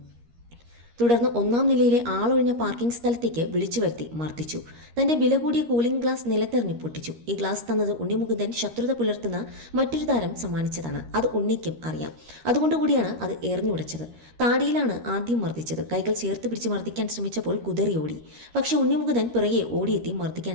തുടർന്ന് 1-ാം നിലയിലെ ആളൊഴിഞ്ഞ പാർക്കിംഗ് സ്ഥലത്തേക്ക് വിളിച്ചു വരുത്തി മർദ്ദിച്ചു. തന്റെ വില കൂടിയ കൂളിംഗ് ഗ്ലാസ് നിലത്തെറിഞ്ഞ് പൊട്ടിച്ചു. ഈ ഗ്ലാസ് തന്നത് ഉണ്ണിമുകുന്ദൻ ശത്രുത പുലർത്തുന്ന മറ്റൊരു താരം സമ്മാനിച്ചതാണ്. അത് ഉണ്ണിക്കും അറിയാം. അതുകൊണ്ടുകൂടിയാണ് അത് എറിഞ്ഞുടച്ചത്. താടിയിലാണ് ആദ്യം മർദ്ദിച്ചത്. കൈകൾ ചേർത്ത് പിടിച്ച് മർദ്ദിക്കാൻ ശ്രമിച്ചപ്പോൾ കുതറി ഓടി. പക്ഷേ ഉണ്ണിമുകുന്ദൻ പിറകെ ഓടിയെത്തി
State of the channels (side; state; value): left; late; 13 ms